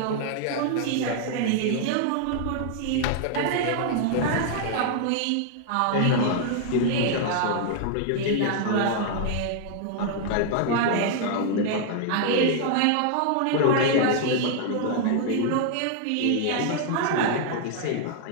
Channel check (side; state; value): both; different; correlation 0.00